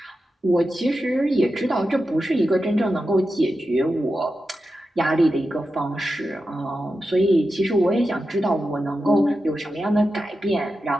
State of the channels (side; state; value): both; normal; correlation 0.90